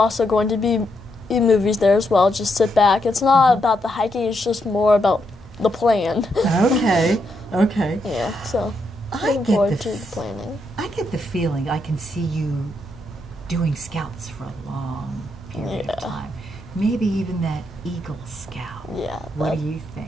going to be eat movies there as well. Just sit back. It's not about the hiking. It's just more about the plan. Okay. Okay. Yeah. So I looking get forward the to the planning. I get the feeling I can see you doing Scouts for a long period of time. Maybe even that Eagle Scout. Yeah. What do you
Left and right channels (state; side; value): normal; both; correlation 0.80